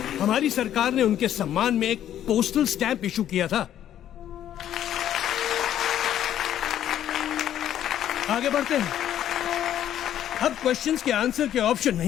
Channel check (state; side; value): quieter; right; 11.1 dB